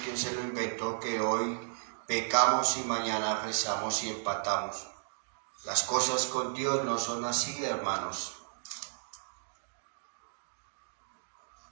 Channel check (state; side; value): silent; left; digital silence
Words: quién se lo inventó, que hoy pecamos y mañana rezamos y empatamos. Las cosas con Dios no son así, hermanos.